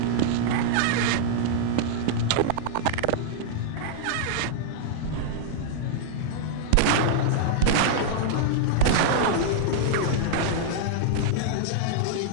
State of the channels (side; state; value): both; different; correlation -0.01